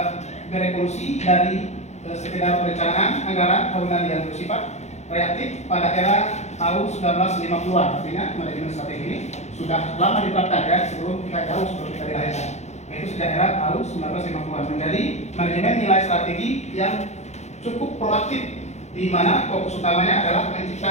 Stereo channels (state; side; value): late; right; 0.33 ms